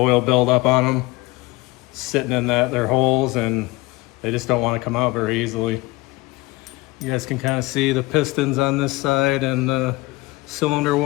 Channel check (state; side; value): quieter; right; 21.6 dB